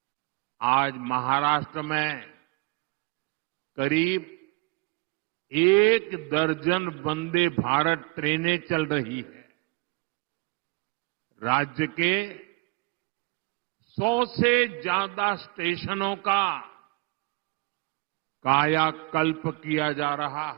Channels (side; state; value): left; quieter; 28.8 dB